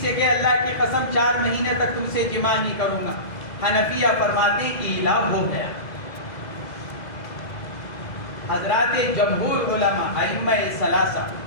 سے کہ اللہ کی قسم 4 مہینے تک تم سے جماع نہیں کروں گا، حنفیہ فرماتے ہیں ایلا ہو گیا. حضرات جمہور علماء ائمہ ثلاثہ،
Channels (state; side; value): late; right; 2.0 ms